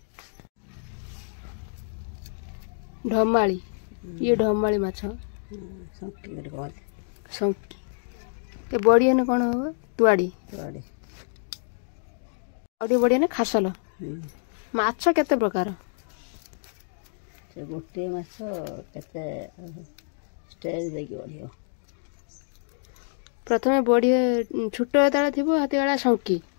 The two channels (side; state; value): right; silent; digital silence